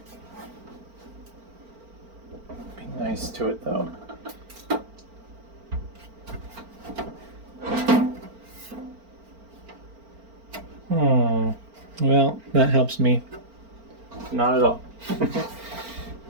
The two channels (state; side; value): late; left; 4.4 ms